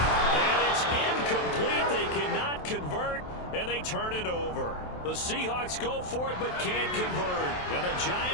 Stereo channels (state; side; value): late; right; 27 ms